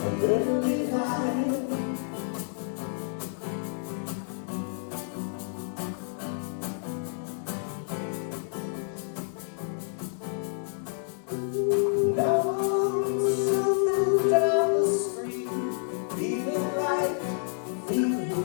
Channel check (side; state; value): right; silent; digital silence